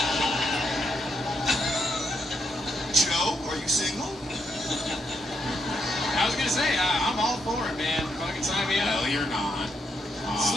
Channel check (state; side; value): normal; both; correlation 0.79